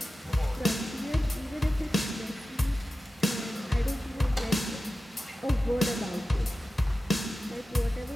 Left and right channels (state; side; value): normal; both; correlation 0.94